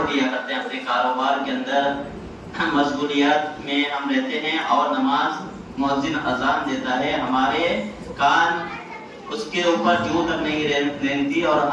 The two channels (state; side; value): identical; both; correlation 1.00